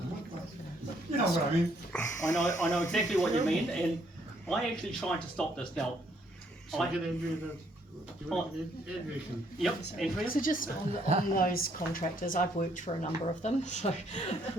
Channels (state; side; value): normal; both; correlation 0.68